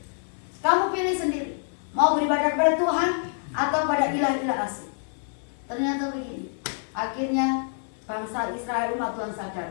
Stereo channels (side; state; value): right; silent; 61 dB below the other